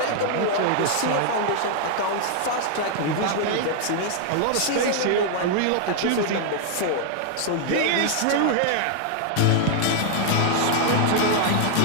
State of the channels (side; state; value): both; different; correlation 0.00